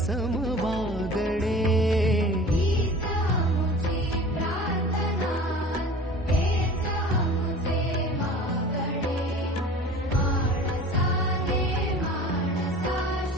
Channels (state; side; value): normal; both; correlation 0.41